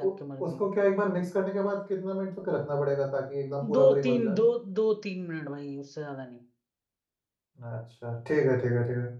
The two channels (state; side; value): identical; both; correlation 1.00